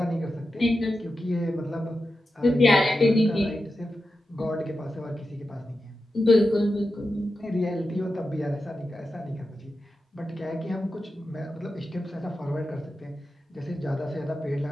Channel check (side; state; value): both; normal; correlation 0.91